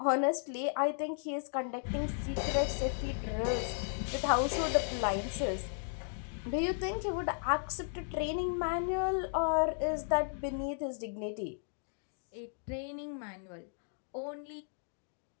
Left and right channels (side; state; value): right; silent; digital silence